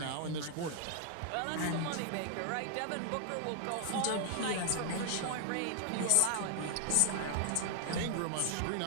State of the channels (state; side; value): different; both; correlation 0.00